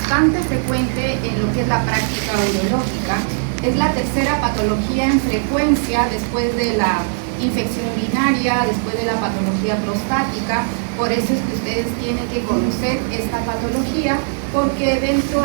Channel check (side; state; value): left; silent; digital silence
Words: frecuente en lo que es la práctica urológica. Es la tercera patología en frecuencia después de la infección urinaria, después de la patología prostática. Por eso es que ustedes tienen que conocer esta patología, porque dentro